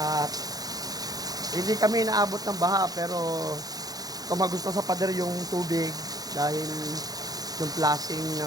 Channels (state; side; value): late; left; 0.18 ms